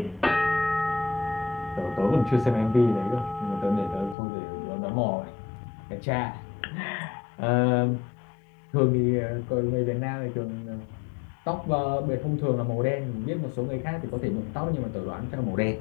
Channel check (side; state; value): right; drops out; at 4.2 s